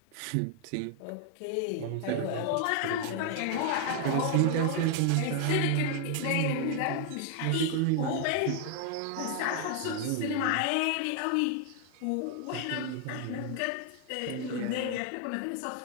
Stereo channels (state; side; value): different; both; correlation 0.00